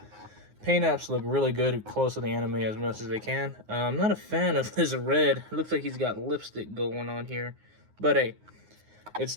paint apps look really good, close to the anime as much as they can. I'm not a fan of this red. It looks like he's got lipstick going on here. But hey, it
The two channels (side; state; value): left; late; 9.6 ms